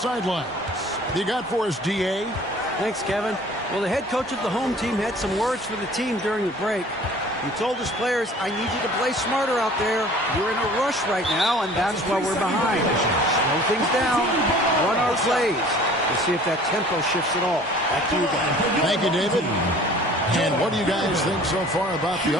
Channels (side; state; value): both; normal; correlation 0.48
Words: What you got for us, D.A.? Thanks, Kevin. Well, the head coach of the home team had some words for the team during the break. He told his players, I need you to play smarter out there. You're in a rush right now, and that's why we're behind. Slow things down, run our plays. We'll see if that tempo shifts at all. Back to you guys. Thank you, David. And what do you guys think so far about the